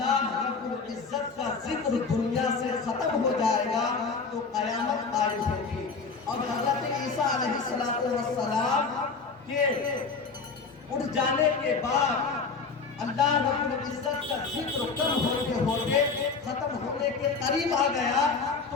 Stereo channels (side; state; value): right; quieter; 4.7 dB